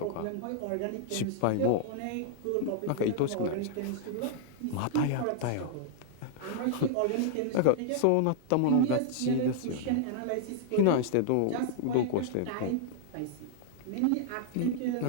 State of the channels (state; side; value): different; both; correlation -0.01